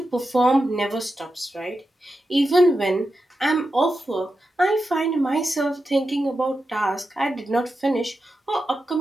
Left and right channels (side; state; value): both; normal; correlation 0.89